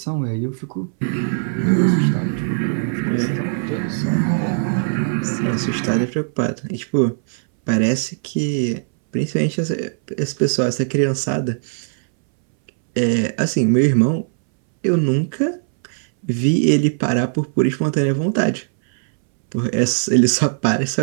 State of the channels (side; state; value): left; silent; 64 dB below the other